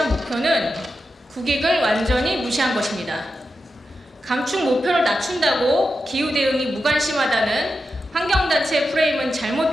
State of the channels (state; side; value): normal; both; correlation 0.89